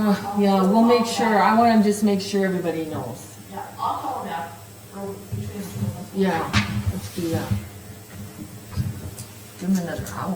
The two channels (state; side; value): identical; both; correlation 1.00